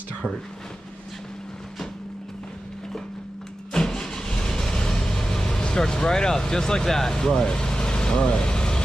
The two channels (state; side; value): normal; both; correlation 0.93